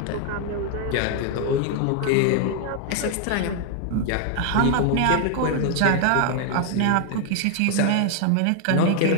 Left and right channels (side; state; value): both; different; correlation 0.00